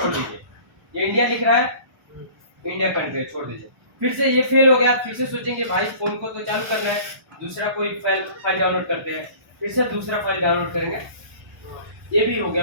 दीजिए, ये इंडिया लिख रहा है, इंडिया कंट्री छोड़ दीजिए। फिर से ये फेल हो गया, फिर से सोचेंगे भाई फोन को तो चालू करना है, दूसरा कोई फाइल डाउनलोड करते हैं, फिर से दूसरा फाइल डाउनलोड करेंगे, ये भी हो गया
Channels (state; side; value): late; left; 1.1 ms